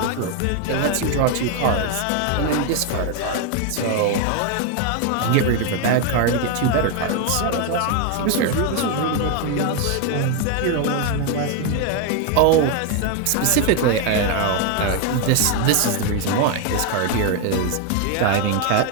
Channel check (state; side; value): different; both; correlation 0.01